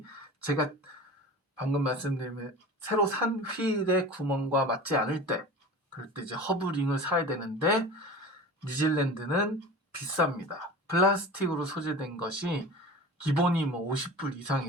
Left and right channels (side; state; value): both; normal; correlation 0.36